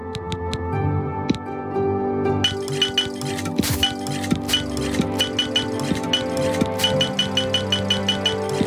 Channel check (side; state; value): both; identical; correlation 1.00